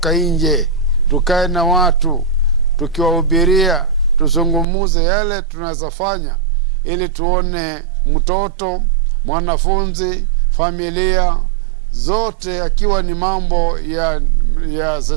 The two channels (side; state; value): left; drops out; at 4.7 s